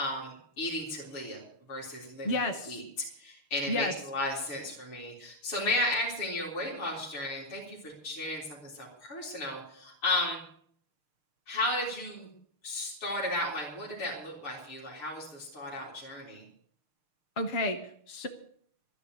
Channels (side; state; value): right; late; 6.6 ms